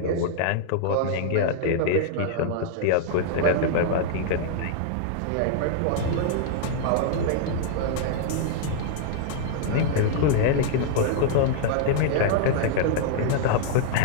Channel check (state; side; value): different; both; correlation -0.01